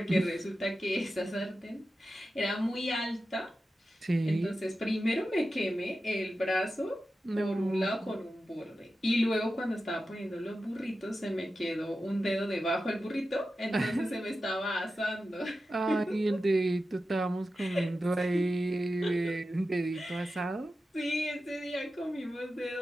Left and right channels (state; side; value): normal; both; correlation 0.92